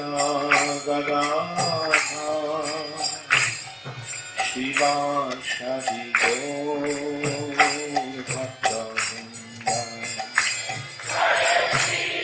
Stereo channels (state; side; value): identical; both; correlation 1.00